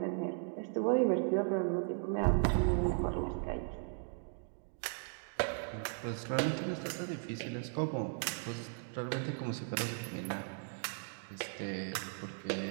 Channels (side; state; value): left; silent; 53 dB below the other